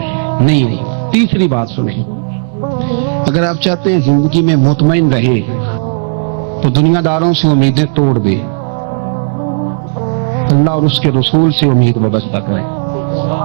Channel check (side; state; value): left; silent; digital silence